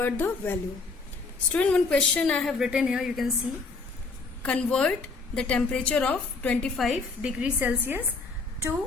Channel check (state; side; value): quieter; right; 4.1 dB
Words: the value. Student, one question I have written here, you can see, convert the temperature of 25 degrees Celsius